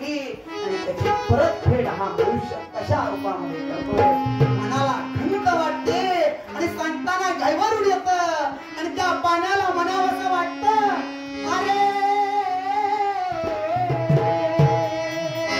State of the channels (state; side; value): identical; both; correlation 1.00